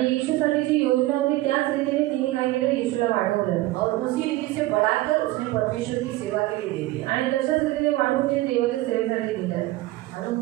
येशूसाठी जी योजना होती त्याच रीतीने तिने काय केलं, येशूला वाढवलं. और उसी रीति से बढ़ाकर उसने परमेश्वर की सेवा के लिए दे दिया. आणि तशाच रीतीने वाढवून तिने देवाच्या सेवेसाठी दिलं. मालूम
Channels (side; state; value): left; quieter; 17.9 dB